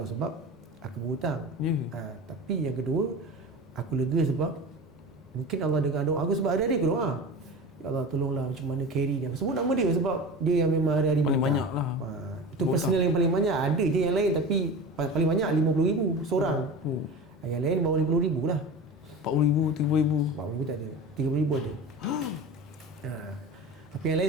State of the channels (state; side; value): normal; both; correlation 0.32